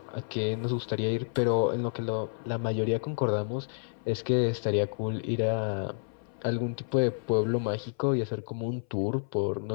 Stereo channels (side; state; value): right; silent; 58 dB below the other